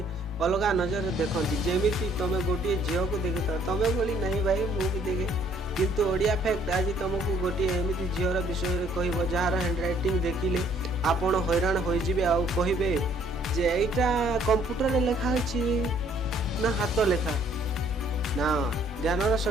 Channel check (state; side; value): normal; both; correlation 0.62